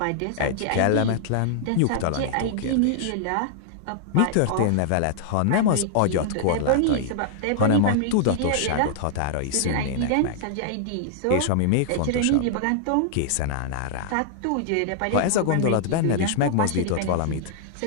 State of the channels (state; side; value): different; both; correlation -0.01